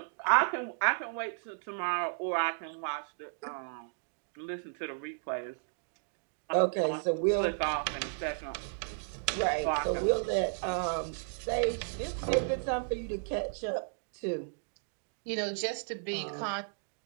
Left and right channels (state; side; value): silent; left; digital silence